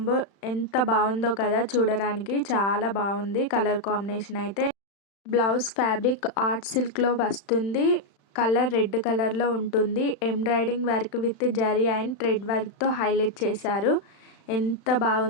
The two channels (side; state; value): right; late; 35 ms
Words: ఎంత బాగుందో కదా. చూడడానికి చాలా బాగుంది కలర్ కాంబినేషన్ అయితే. బ్లౌజ్ ఫ్యాబ్రిక్ ఆర్ట్ సిల్క్లో వస్తుంది. కలర్ రెడ్ కలర్లో ఉంటుంది. Embroidering work with zari and thread వర్క్తో హైలైట్ చేశారు. ఎంత